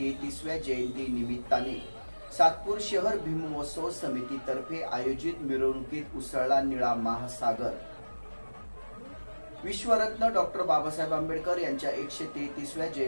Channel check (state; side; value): inverted; both; correlation -1.00